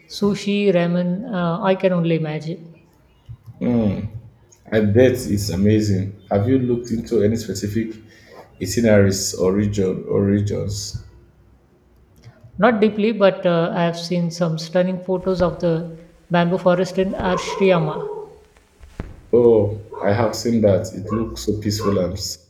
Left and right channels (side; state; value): both; identical; correlation 1.00